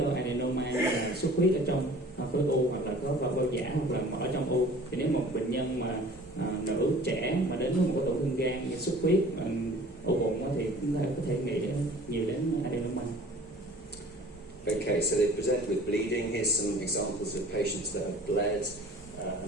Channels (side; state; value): both; normal; correlation 0.47